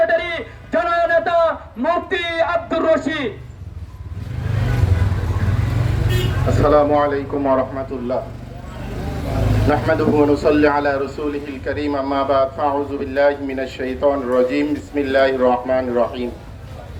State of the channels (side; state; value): both; identical; correlation 1.00